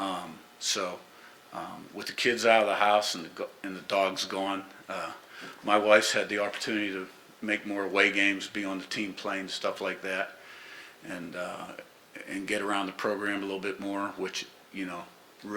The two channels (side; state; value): both; identical; correlation 1.00